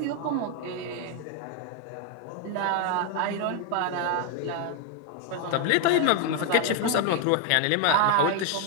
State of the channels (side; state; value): both; different; correlation 0.01